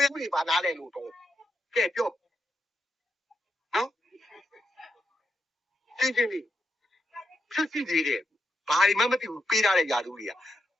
ရမှုတွေပါနားလဲလို့တော့ကဲပြောနော်ရှင်းလေးဖြစ်စီသေးတယ်ဘာတွေမှမသိဘူးပေးထားတဲ့ຢာသူတွေက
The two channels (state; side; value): normal; both; correlation 0.84